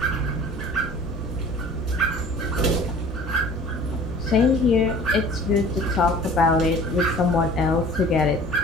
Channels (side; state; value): both; normal; correlation 0.47